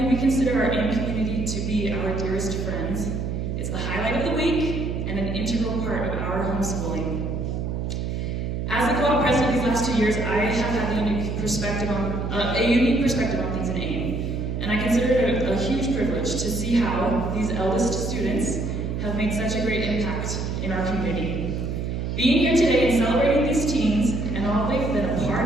we consider our AIM community to be our dearest friends. It's the highlight of the week and an integral part of our homeschooling. As the co-op president these last 2 years, I have had a unique perspective on things in AIM, and I consider it a huge privilege to see how these eldest students have made such a great impact in our community. Being here today and celebrating these teens and all they've been a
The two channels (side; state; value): right; noise; hum, 2 dB below the sound